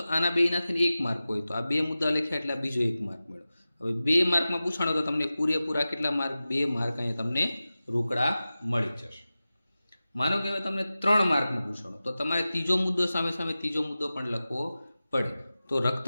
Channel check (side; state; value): both; inverted; correlation -0.95